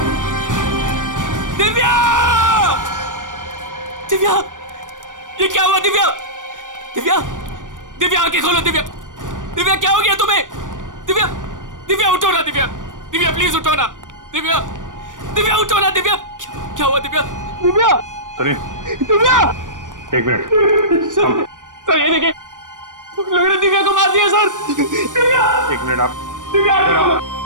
दिव्या! दिव्या! ये क्या हुआ दिव्या? दिव्या! दिव्या आंखें खोलो दिव्या! दिव्या क्या हो गया तुम्हें? दिव्या! दिव्या उठो ना दिव्या! दिव्या प्लीज उठो ना! दिव्या! दिव्या उठो ना दिव्या! क्या हुआ दिव्या? दिव्या! सुनिए। दिव्या! एक मिनट। सर ये देखिए, लोगों ने दिव्या को मार दिया सर। दिव्या! एक मिनट आप। दिव्या!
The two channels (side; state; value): left; late; 0.88 ms